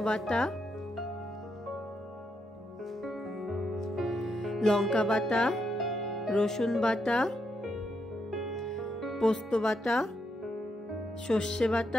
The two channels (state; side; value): normal; both; correlation 0.80